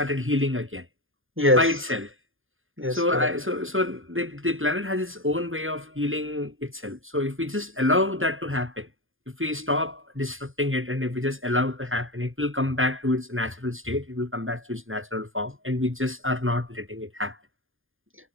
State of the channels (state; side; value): late; left; 0.59 ms